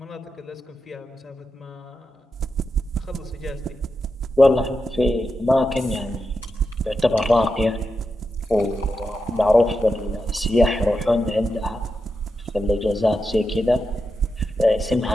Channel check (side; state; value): both; normal; correlation 0.88